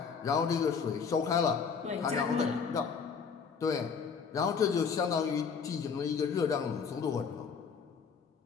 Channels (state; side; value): quieter; right; 6.1 dB